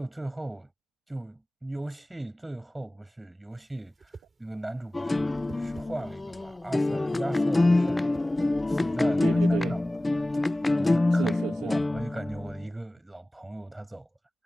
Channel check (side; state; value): both; normal; correlation 0.97